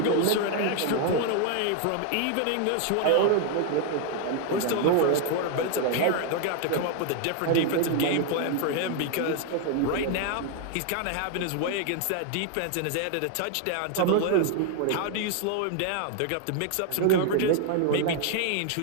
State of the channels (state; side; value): different; both; correlation 0.00